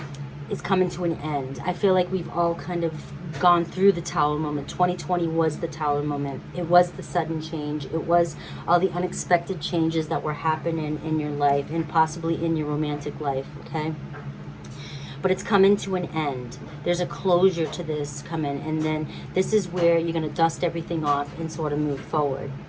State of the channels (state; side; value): identical; both; correlation 1.00